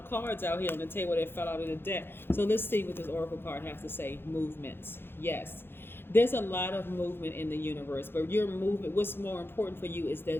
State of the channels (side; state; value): right; late; 0.11 ms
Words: cards out here on the table that fell out of the deck. So let's see what this oracle card has to say. Movements. Yes, there's a lot of movement in the universe, but your movement, what's more important for you is